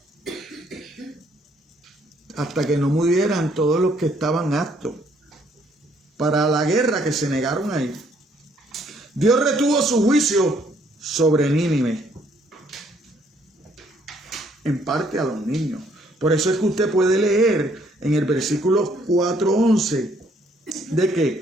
Hasta que no murieran todos los que estaban aptos para la guerra, que se negaron a ir. Dios retuvo su juicio sobre Nínive, en parte a los niños. Por eso es que usted puede leer en el versículo 4:11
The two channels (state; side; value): normal; both; correlation 0.66